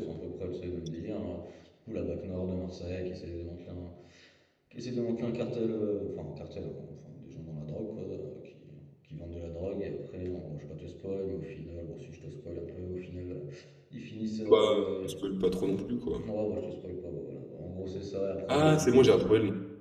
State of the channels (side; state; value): both; identical; correlation 1.00